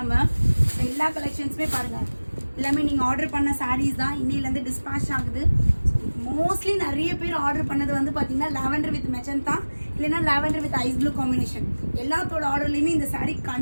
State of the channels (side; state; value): both; inverted; correlation -1.00